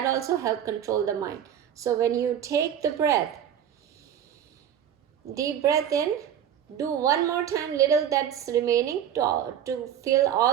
also helps control the mind. So when you take the breath, deep breath in, do one more time little that's remaining to fill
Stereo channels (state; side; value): quieter; left; 9.6 dB